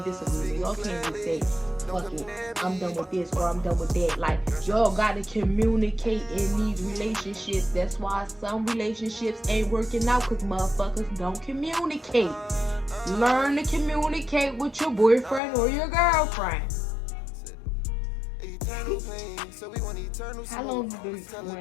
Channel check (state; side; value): drops out; right; at 15.4 s